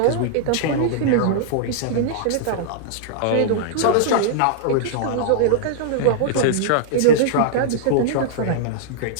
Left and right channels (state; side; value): different; both; correlation -0.01